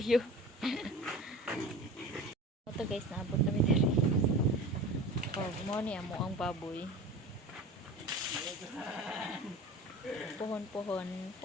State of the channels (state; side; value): normal; both; correlation 0.36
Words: Ito guys, naabot kami dito. Oh, mo ni amo ang baboy. Pohon-pohon